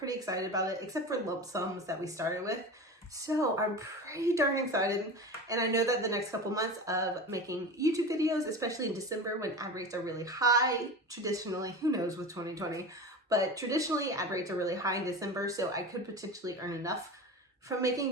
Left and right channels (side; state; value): both; normal; correlation 0.29